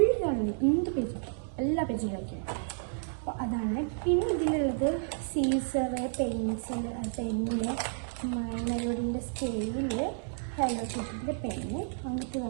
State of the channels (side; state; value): left; silent; digital silence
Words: ജേണൽ, എന്ത് പേജ് എല്ലാ പേജിലും ഒക്കെയാണ്. അപ്പോൾ അതാണ്. പിന്നെ ഇതിലുള്ളത് സീസർ, പെൻസിൽ, പെന്ന്, മൈ മെലഡിൻ്റെ സ്കെയില്, ഹലോ കിറ്റിൻ്റെ പെന്ന്, അങ്ങനത്തെ